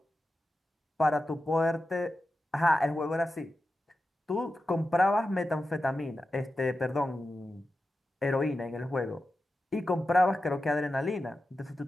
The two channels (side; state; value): both; normal; correlation 0.92